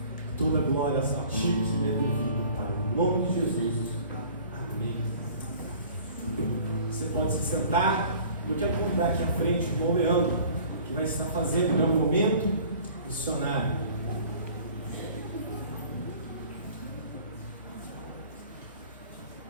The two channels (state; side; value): inverted; both; correlation -0.48